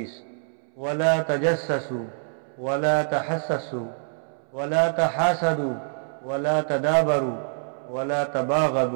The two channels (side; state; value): left; silent; 61 dB below the other